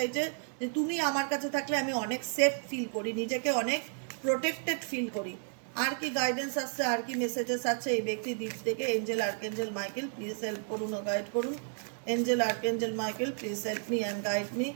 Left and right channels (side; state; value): left; silent; 56 dB below the other